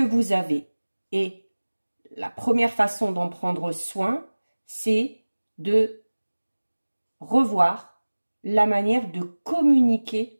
avez. Et la première façon d'en prendre soin, c'est de revoir la manière de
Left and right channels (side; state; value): both; inverted; correlation -1.00